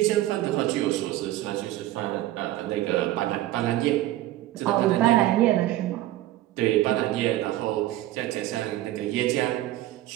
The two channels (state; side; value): quieter; left; 15.2 dB